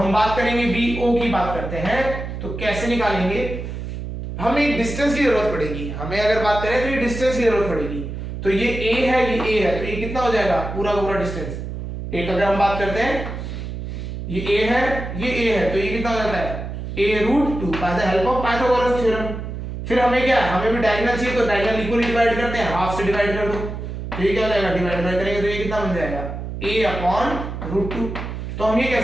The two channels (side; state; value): right; noise; hum, 7 dB below the sound